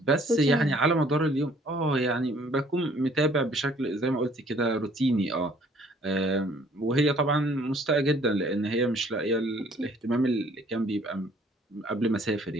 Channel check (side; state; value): both; normal; correlation 0.59